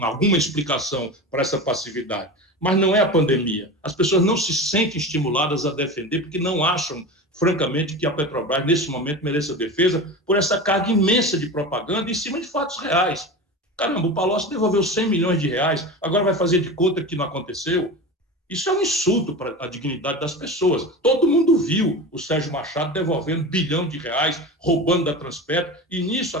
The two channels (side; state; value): both; normal; correlation 0.28